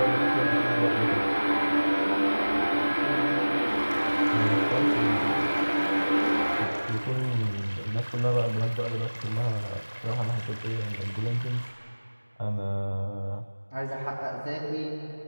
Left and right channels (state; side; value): inverted; both; correlation -1.00